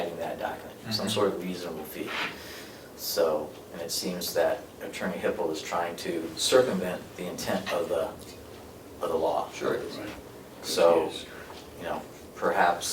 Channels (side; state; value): both; identical; correlation 1.00